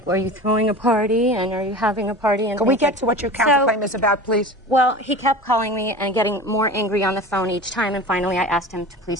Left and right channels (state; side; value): normal; both; correlation 0.35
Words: are you throwing a party? And are you having a party? And can we get to what your counterclaim is about, please? Well, he kept calling me and getting more angry on the phone each time, and finally I asked him to